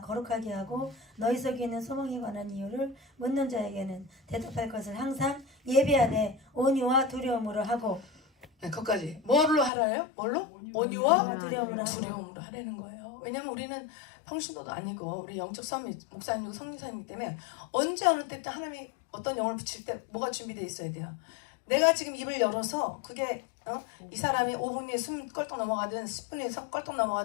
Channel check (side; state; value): right; drops out; at 9.7 s